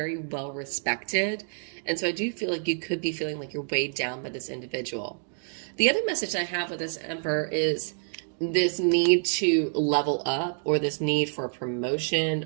well respected, and so I do feel like you could be feeling like you're weighed down by this individual. The other message I have with this Emperor is this need to level up, or this need for a promotion,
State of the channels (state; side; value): silent; left; 60 dB below the other